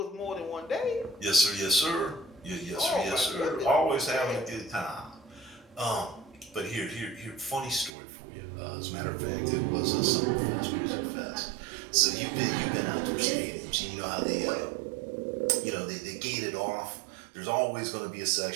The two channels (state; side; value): drops out; left; at 7.9 s